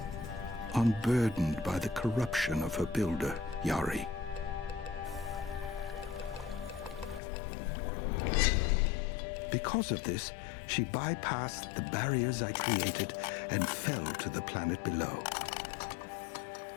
unburdened by the corruption of her builder, Yari. Because of this, she bypassed the barriers I created and fell to the planet below.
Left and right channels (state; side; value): drops out; right; at 7.2 s